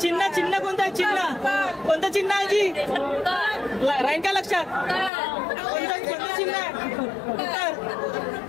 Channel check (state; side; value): drops out; right; at 5.1 s